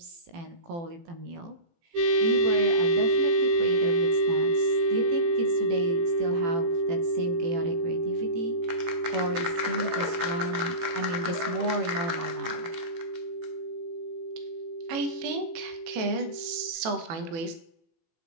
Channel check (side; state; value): left; late; 18 ms